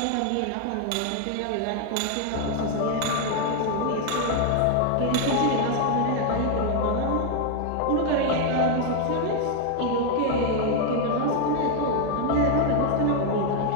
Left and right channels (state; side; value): different; both; correlation 0.00